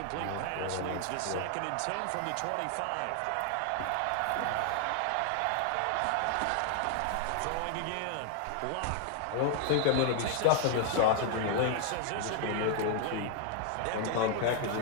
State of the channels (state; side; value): different; both; correlation 0.00